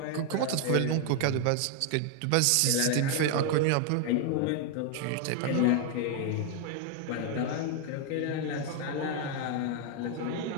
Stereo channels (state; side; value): different; both; correlation 0.00